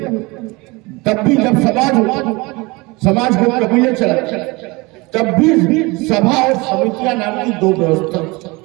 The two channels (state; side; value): quieter; left; 24.5 dB